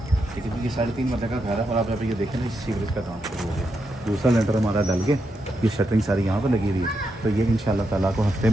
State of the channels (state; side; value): normal; both; correlation 0.83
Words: ठीक है, ये 3.5 मरले का घर है, और आप जब ये देखें ना, इस सीवरेज का काम शुरू हो गया। दूसरा लेंटर हमारा डल के, ये शटरिंग सारी यहाँ पर लगी हुई है, तो ये इंशाल्लाह ताला को हफ्ते